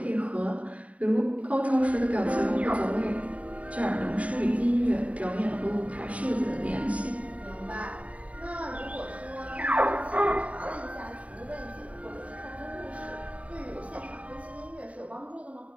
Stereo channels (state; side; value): late; left; 0.067 ms